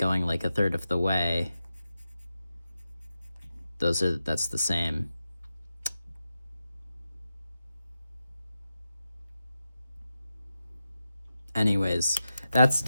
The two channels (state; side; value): inverted; both; correlation -0.90